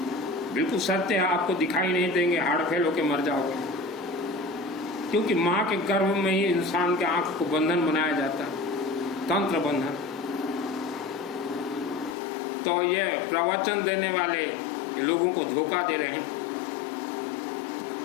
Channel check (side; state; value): right; drops out; at 12.2 s